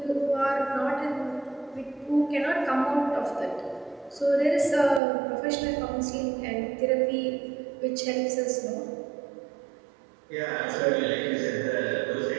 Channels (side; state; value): left; drops out; at 5.0 s